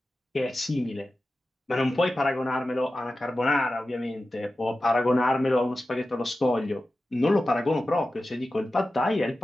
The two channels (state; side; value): normal; both; correlation 0.94